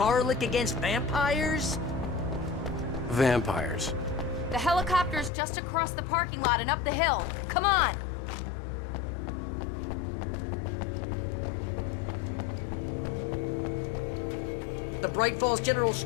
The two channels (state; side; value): drops out; right; at 5.3 s